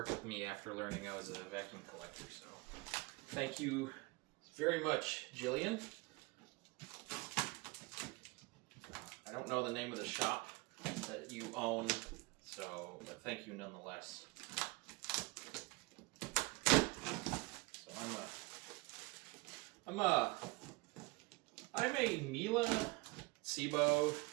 with me after learning I was a vacuum collector. So thank you very much, Jillian. I don't know the name of the shop that you own, but thank you nonetheless. So I'm a Miele, Sebo,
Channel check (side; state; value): left; quieter; 25.0 dB